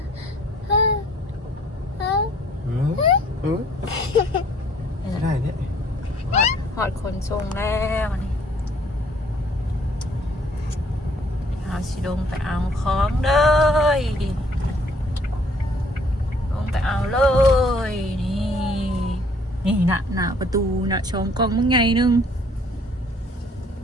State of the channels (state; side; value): normal; both; correlation 0.60